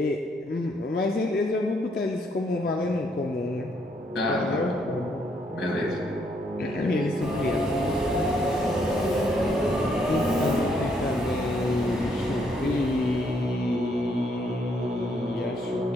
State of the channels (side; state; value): both; normal; correlation 0.72